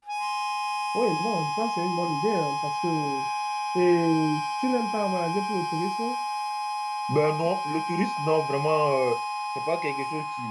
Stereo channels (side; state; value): both; identical; correlation 1.00